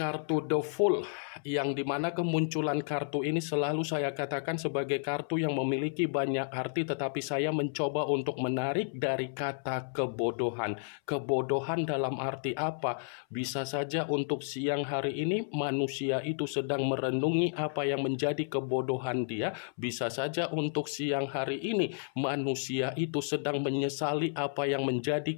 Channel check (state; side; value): silent; right; 57 dB below the other